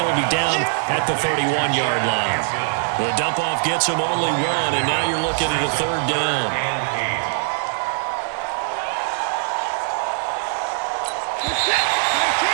be down at the 31-yard line. The dump-off gets him only 1, and now you're looking at a 3rd down.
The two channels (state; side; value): silent; left; 58 dB below the other